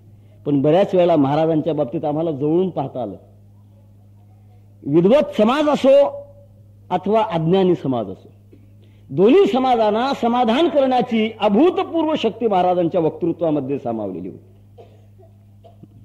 पण बऱ्याच वेळेला महाराजांच्या बाबतीत आम्हाला जवळून पाहता आलं. विद्वत समाज असो अथवा अज्ञानी समाज असो, दोन्ही समाजांना समाधान करण्याची अभूतपूर्व शक्ती महाराजांच्या वक्तृत्वामध्ये सामावलेली होती.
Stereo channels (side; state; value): both; identical; correlation 1.00